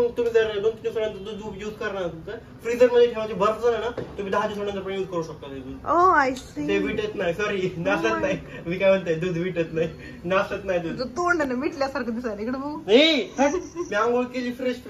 जर 2-3 दिवसानंतर दूध यूज करणार फ्रीजर मध्ये ठेवायचे बर्फ झाला ना तुम्ही 10 दिवसानंतर पण यूज करू शकता ते दूध. ओ आय सी. ते विटत नाही. सॉरी नासत नाही. मी काय म्हणतोय दूध विटत नाही. नासत नाही दूध. तोंडाने मिटल्यासारखं दिसायला इकडे बघू. मी आंघोळ केली फ्रेश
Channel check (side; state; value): both; identical; correlation 1.00